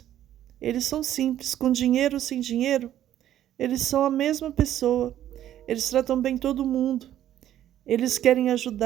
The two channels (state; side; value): quieter; left; 11.8 dB